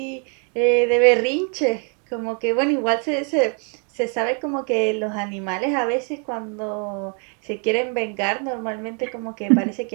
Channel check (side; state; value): left; quieter; 39.8 dB